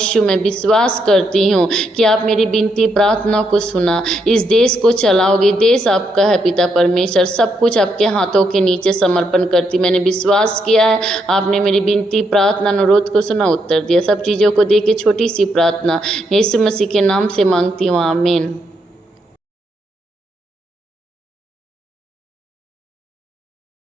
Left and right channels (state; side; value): normal; both; correlation 0.78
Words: मैं विश्वास करती हूँ कि आप मेरी विनती प्रार्थना को सुना, इस देश को चलाओगे, देश आपका है पिता परमेश्वर, सब कुछ आपके हाथों के नीचे समर्पण करती। मैंने विश्वास किया है, आपने मेरी विनती प्रार्थना अनुरोध को सुना, उत्तर दिया। सब चीज़ों को दे के छोटी सी प्रार्थना यीशु मसीह के नाम से मांगती हूँ, आमीन।